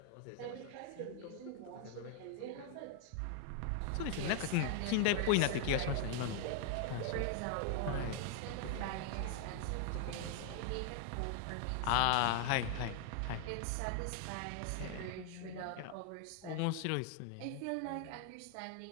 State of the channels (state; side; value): different; both; correlation 0.00